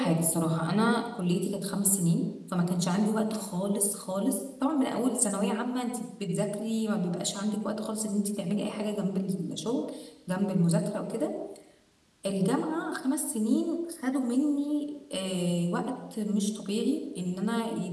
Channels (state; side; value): identical; both; correlation 1.00